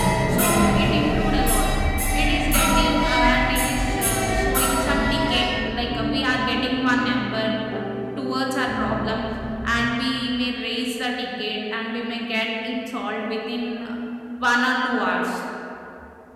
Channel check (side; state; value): both; identical; correlation 1.00